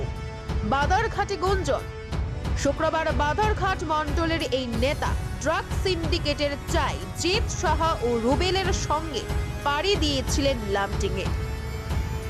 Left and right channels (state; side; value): identical; both; correlation 1.00